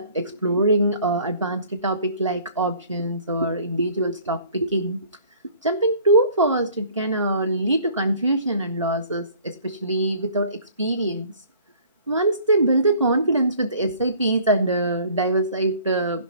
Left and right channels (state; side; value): inverted; both; correlation -0.52